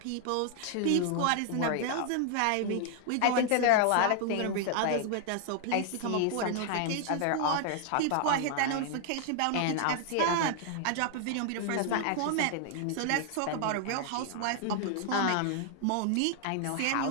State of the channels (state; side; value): different; both; correlation 0.00